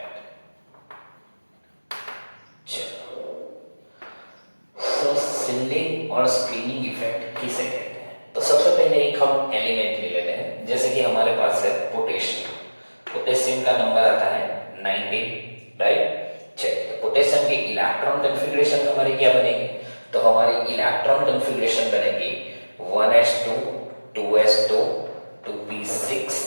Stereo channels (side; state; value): both; inverted; correlation -1.00